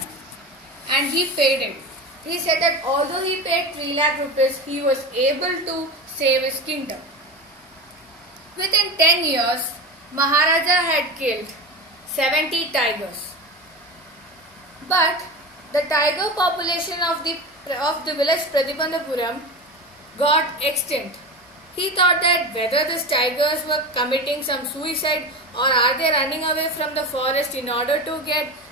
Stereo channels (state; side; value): normal; both; correlation 0.26